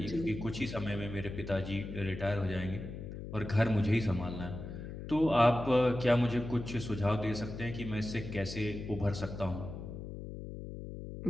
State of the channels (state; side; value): noise; left; hum, 9 dB below the sound